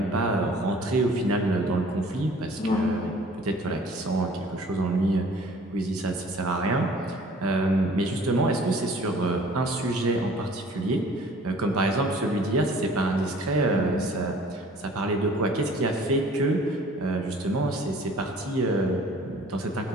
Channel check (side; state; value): both; normal; correlation 0.51